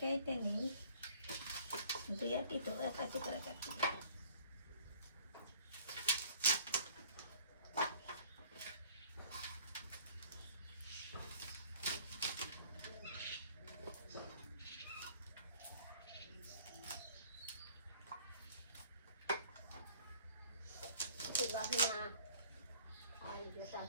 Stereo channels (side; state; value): both; inverted; correlation -0.55